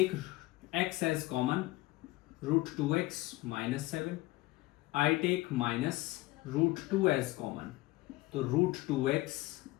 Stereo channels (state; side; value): quieter; right; 19.7 dB